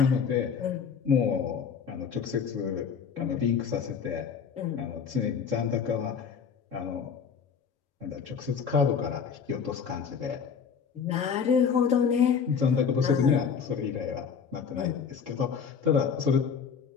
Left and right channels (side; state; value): right; quieter; 6.6 dB